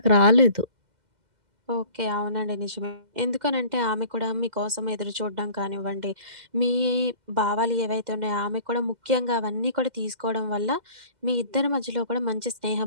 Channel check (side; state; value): left; late; 2.1 ms